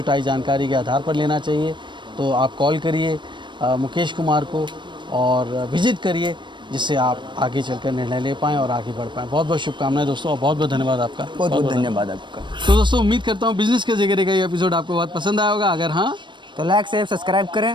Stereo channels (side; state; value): left; late; 0.22 ms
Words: जानकारी के आधार पर लेना चाहिए। तो आप कॉल करिए मुकेश कुमार को और विजिट करिए, जिससे आप आगे चलकर निर्णय ले पाएँ और आगे बढ़ पाएँ। बहुत बहुत शुभकामनाएं दोस्तों, और बहुत बहुत धन्यवाद आपका। बहुत बहुत धन्यवाद आपका। तो दोस्तों, उम्मीद करता हूँ बिजनेस के जिक्र का ये एपिसोड आपको बहुत पसंद आया होगा। अगर हाँ, तो लाइक शेयर सब्सक्राइब करें।